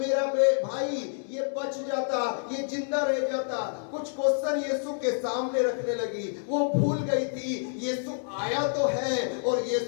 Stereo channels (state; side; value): silent; right; digital silence